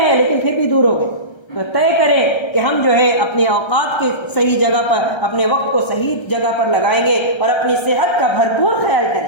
ہے لیکن پھر بھی دور ہو گئے۔ تو طے کریں کہ ہم جو ہے اپنے اوقات کے صحیح جگہ پر، اپنے وقت کو صحیح جگہ پر لگائیں گے اور اپنی صحت کا بھرپور خیال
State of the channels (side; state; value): right; late; 1.3 ms